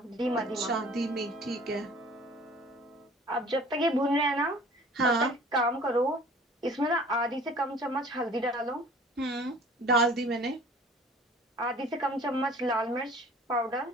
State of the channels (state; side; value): normal; both; correlation 0.49